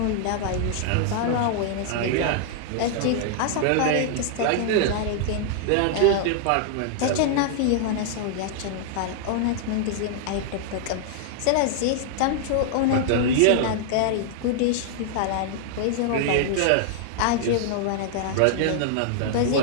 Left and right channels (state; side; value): different; both; correlation -0.01